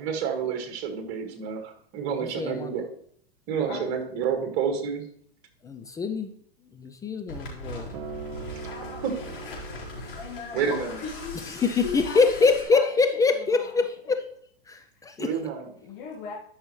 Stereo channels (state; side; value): normal; both; correlation 0.43